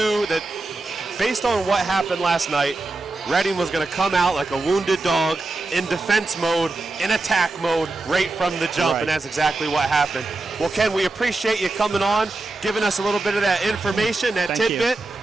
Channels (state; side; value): quieter; left; 3.2 dB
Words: that based on what happened last night, Reading was going to come out like a wounded dog in defense mode, in attack mode, right from the jump, and that's exactly what happened. Well, Ken, we appreciate you coming on, giving us a little bit of that information, that tidbit,